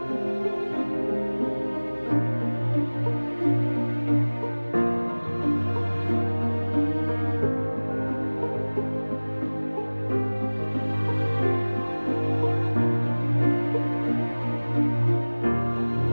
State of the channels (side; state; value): both; inverted; correlation -1.00